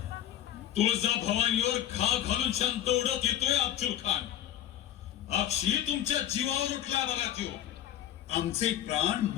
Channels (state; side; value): quieter; right; 11.7 dB